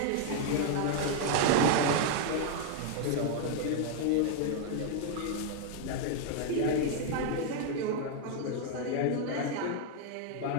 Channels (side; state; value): both; different; correlation 0.00